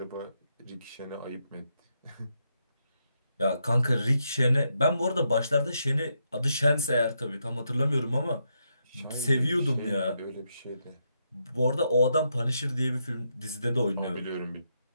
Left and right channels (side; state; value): both; inverted; correlation -0.81